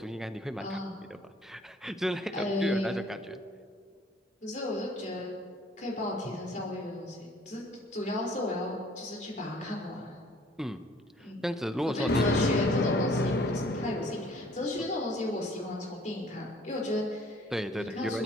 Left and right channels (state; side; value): normal; both; correlation 0.56